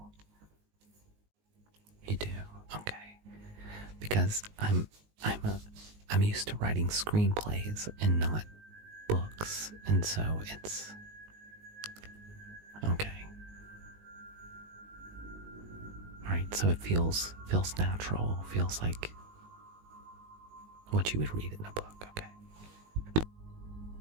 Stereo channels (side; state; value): left; late; 19 ms